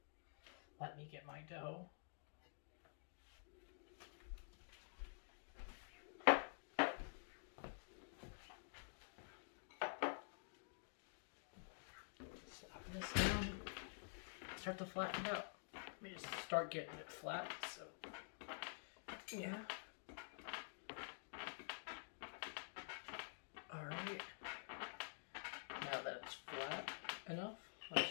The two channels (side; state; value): right; silent; digital silence